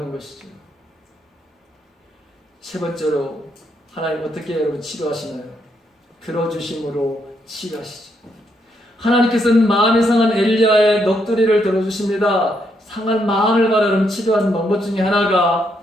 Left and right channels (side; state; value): both; normal; correlation 0.76